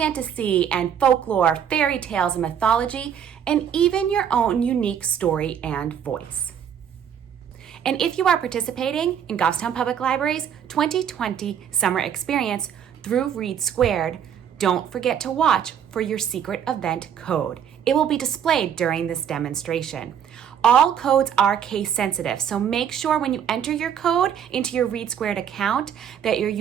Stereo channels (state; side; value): quieter; left; 8.7 dB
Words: and folklore, fairy tales and mythology, and even your own unique story and voice. And if you are participating in Goffstown Public Library's 2020 summer experience through READsquared, don't forget to watch for your secret event code. It will be displayed during this demonstration. All codes are case sensitive, so make sure when you enter your code into your READsquared account that you're